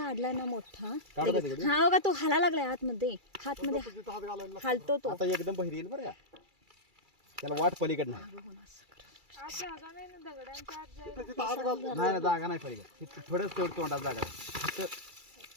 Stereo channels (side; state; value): left; late; 2.3 ms